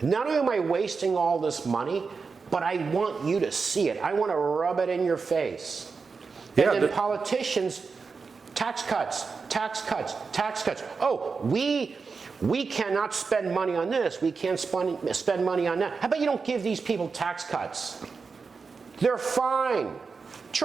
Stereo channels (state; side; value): quieter; left; 4.9 dB